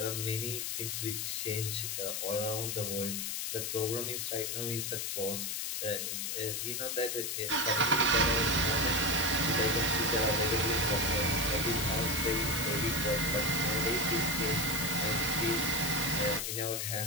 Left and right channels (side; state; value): left; noise; hiss, 2 dB below the sound